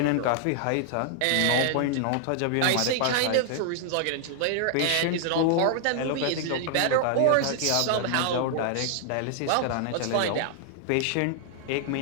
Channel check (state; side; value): different; both; correlation 0.00